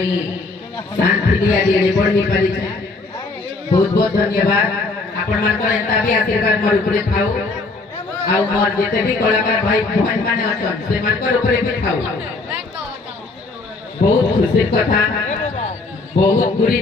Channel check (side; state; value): right; quieter; 3.6 dB